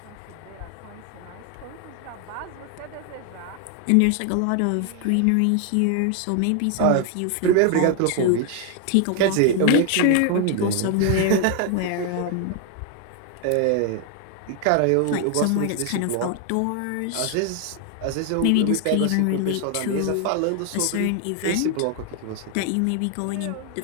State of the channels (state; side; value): different; both; correlation 0.00